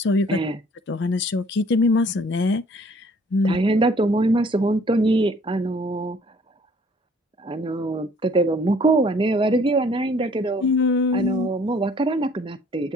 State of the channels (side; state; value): both; normal; correlation 0.57